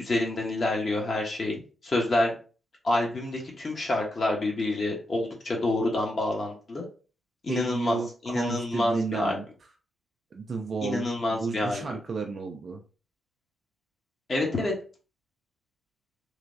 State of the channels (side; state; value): both; normal; correlation 0.84